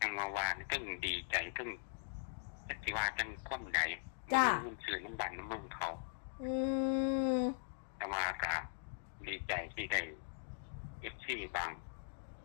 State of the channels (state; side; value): silent; right; digital silence